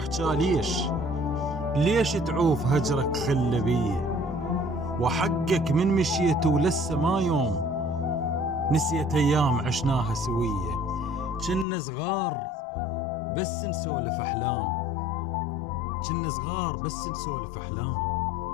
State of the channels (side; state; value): right; drops out; at 11.7 s